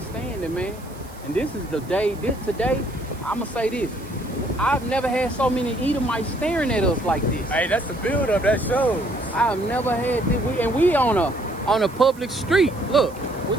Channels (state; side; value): noise; right; hiss, 23 dB below the sound